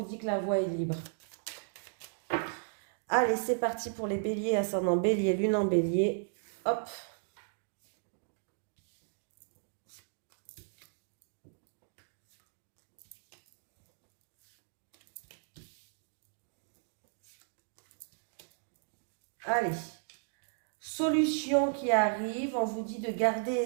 dit que la voie est libre. Allez, c'est parti pour les béliers, ascendant bélier, lune en bélier. Hop. Allez. Solution qui arrive, on vous dit de garder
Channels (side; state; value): left; silent; digital silence